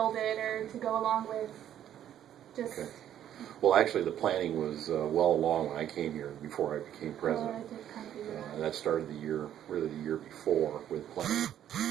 it or to go along with just... Okay. Well, actually, the planning was well along when I came here, before I became president. I did kind of figure That started the year before, with planning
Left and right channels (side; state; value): left; quieter; 10.8 dB